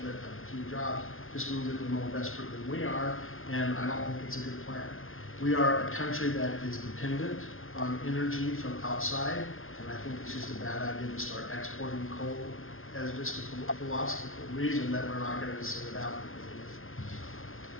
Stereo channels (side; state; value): right; late; 0.60 ms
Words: of a few jobs just means that they're more desperate than we are, and I don't think it's a good plan. We are a country that is dependent on energy from outside, and I think it's just a bad idea to start exporting coal as just a philosophical reason that we're not going to send it out.